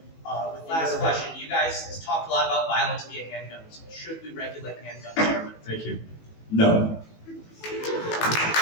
Last question. You guys talked a lot about violence via handguns. Should we regulate handguns? Thank you. No.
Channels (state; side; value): late; right; 18 ms